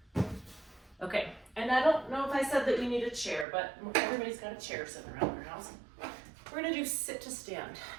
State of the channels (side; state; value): left; drops out; at 3.5 s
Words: Okay, and I don't know if I said that you need a chair, but everybody's got a chair sitting around their house. We're gonna do sit to stand.